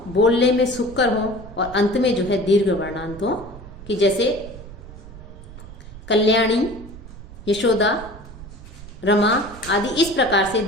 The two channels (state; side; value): noise; right; rumble, 15 dB below the sound